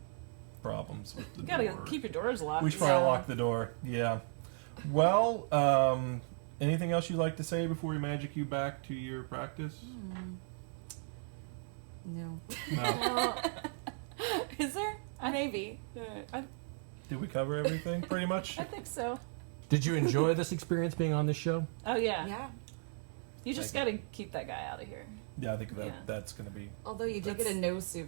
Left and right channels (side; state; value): left; silent; 54 dB below the other